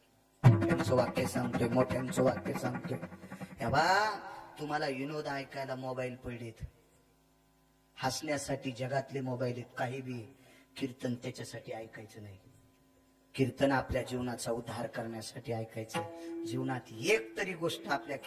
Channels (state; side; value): identical; both; correlation 1.00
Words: मोठ्यांचं वाक्य सांगतोय, मोठ्यांचं वाक्य सांगतोय. हे बा, तुम्हाला विनोद ऐकायला मोबाईल पडलेत, हसण्यासाठी जगातले मोबाईल आहेत, काही बी. कीर्तन त्याच्यासाठी ऐकायचं नाही. कीर्तन आपल्या जीवनाचा उद्धार करण्यासाठी ऐकायचं. जीवनात एक तरी गोष्ट आपल्या